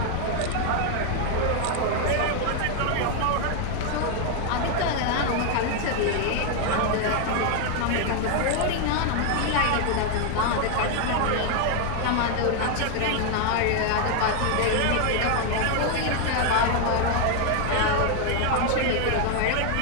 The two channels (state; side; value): different; both; correlation 0.01